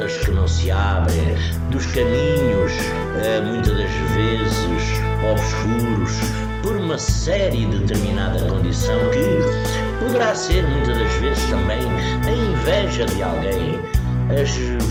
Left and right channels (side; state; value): both; identical; correlation 1.00